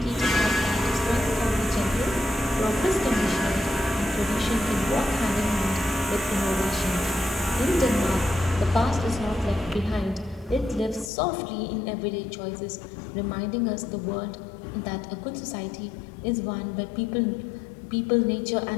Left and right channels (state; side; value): drops out; right; at 11.1 s